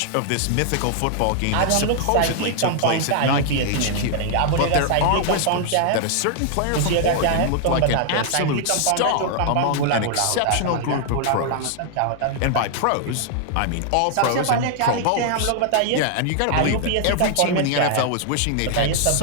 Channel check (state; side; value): different; both; correlation 0.00